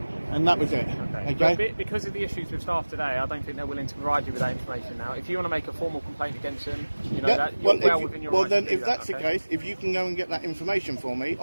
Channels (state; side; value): inverted; both; correlation -1.00